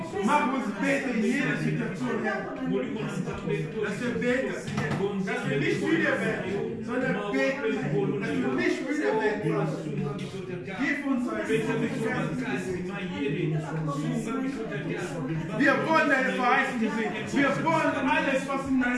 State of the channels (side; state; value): both; identical; correlation 1.00